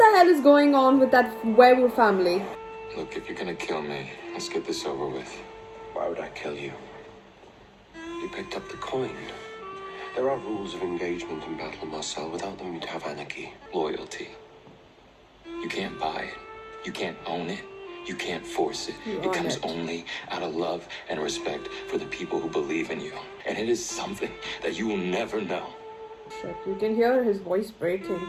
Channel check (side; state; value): both; identical; correlation 1.00